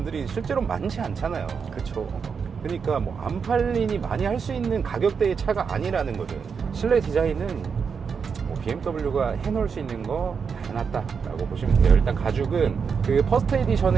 실제로 많지 않잖아요. 그렇죠. 그러니까 뭐 안 팔리니 많이 할 수 있는 가격대의 차가 아니라는 거죠. 실내 디자인은 뭐 BMW가 해놓을 수 있는 거 다 해놨다라고 보시면 돼요. 일단 가죽은 그 퍼스트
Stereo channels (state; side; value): quieter; left; 6.1 dB